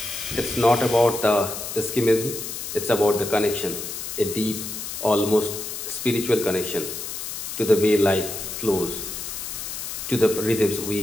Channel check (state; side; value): noise; left; hiss, 7 dB below the sound